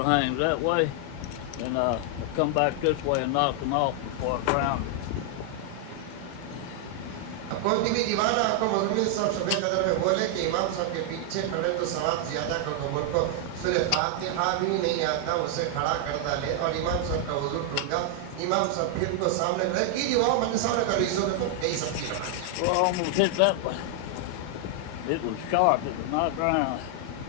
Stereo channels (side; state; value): both; different; correlation 0.00